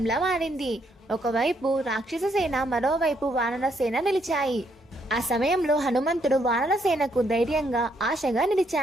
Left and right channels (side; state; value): both; normal; correlation 0.73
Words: మారింది. ఒకవైపు రాక్షస సేన, మరోవైపు వానర సేన నిలిచాయి. ఆ సమయంలో హనుమంతుడు వానర సేనకు ధైర్యంగా, ఆశగా